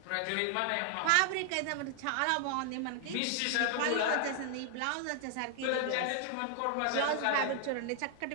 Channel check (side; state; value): both; different; correlation 0.00